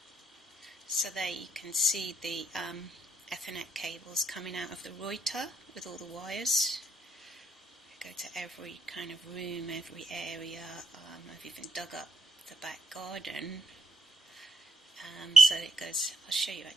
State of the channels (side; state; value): both; normal; correlation 0.70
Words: So there you can see the Ethernet cables coming out of the router with all the wires. I go to every kind of room, every area. I've even dug up the back garden. So it goes, I'll show you